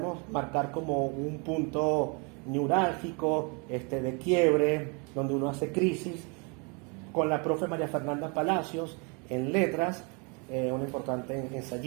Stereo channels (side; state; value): left; quieter; 32.9 dB